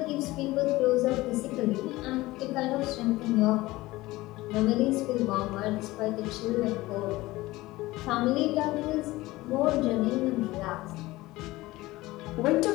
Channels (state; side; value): quieter; right; 18.9 dB